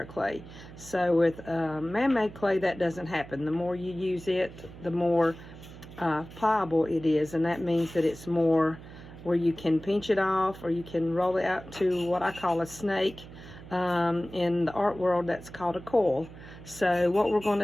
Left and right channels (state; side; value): noise; right; hum, 16 dB below the sound